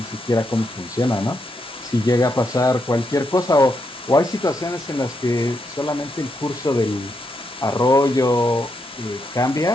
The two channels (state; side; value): normal; both; correlation 0.81